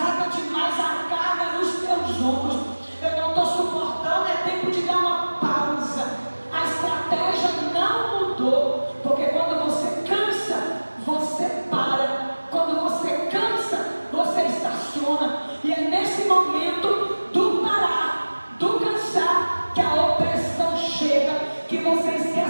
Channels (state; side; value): inverted; both; correlation -1.00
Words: demais a carga nos teus ombros, eu não estou suportando, é tempo de dar uma pausa. A estratégia não mudou, porque quando você cansa, você para. Quando você cansa, você estaciona. E é nesse momento do parar, do cansar, que a opressão chega, que você